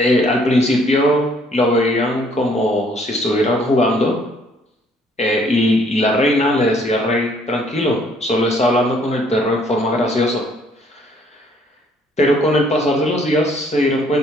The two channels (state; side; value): normal; both; correlation 0.63